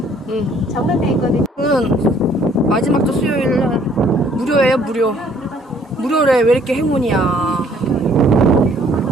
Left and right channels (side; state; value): both; normal; correlation 0.61